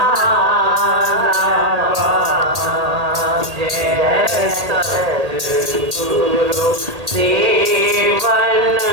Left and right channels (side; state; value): left; late; 1.8 ms